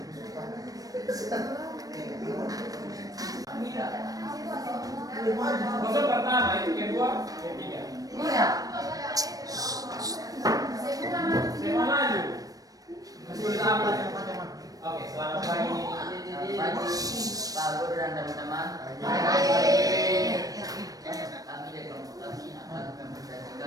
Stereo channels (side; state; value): left; late; 0.18 ms